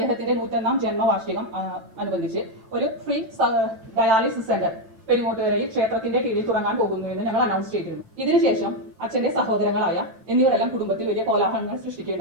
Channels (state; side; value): late; left; 8.9 ms